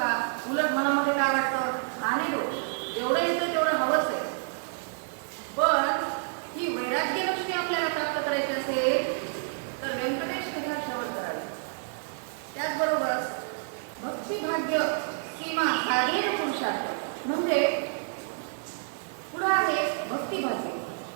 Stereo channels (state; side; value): silent; left; digital silence